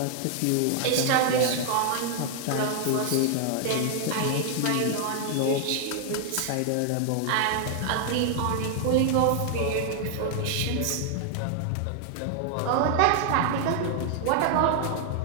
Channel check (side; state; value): both; different; correlation 0.00